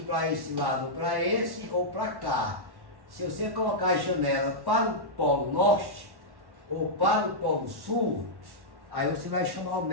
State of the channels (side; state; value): left; late; 1.1 ms